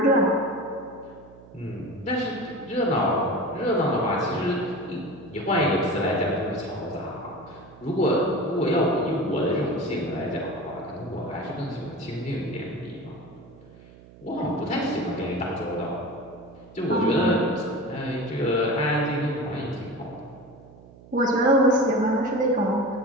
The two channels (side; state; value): right; noise; hum, 21 dB below the sound